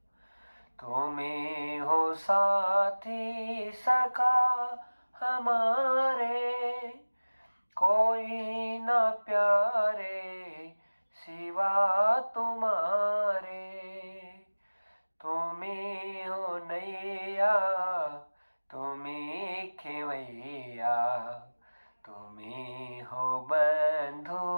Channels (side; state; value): both; inverted; correlation -1.00